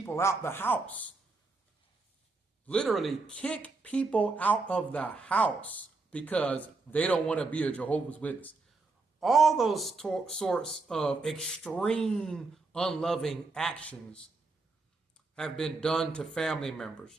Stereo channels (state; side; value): quieter; left; 3.7 dB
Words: out the house. Literally kick people out of the house because they don't want to be a Jehovah's Witness. All those sorts of extreme unloving actions have been done to family members,